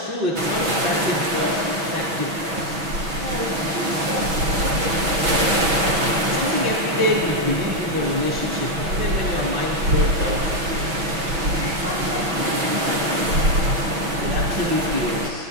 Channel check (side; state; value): left; late; 6.1 ms